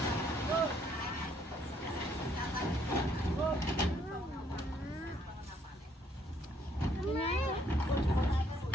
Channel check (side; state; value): both; normal; correlation 0.67